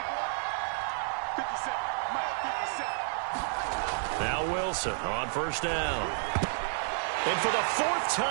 Now Wilson on first down. And for the fourth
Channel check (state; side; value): silent; left; digital silence